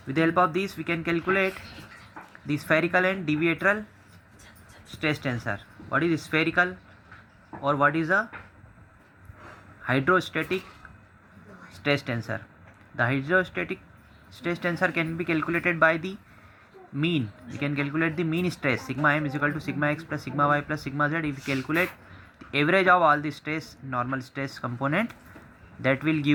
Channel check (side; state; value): both; identical; correlation 1.00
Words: with the help of this we can calculate the spherical and deviatorial stress tensor. What is spherical or what is a hydrostatic stress tensor? The hydrostatic stress tensor can be calculated by the mean. We can calculate the mean stress. Sigma m is equal to sigma x plus sigma y plus sigma z. If we calculate the average of all the stress, normal stress component, that will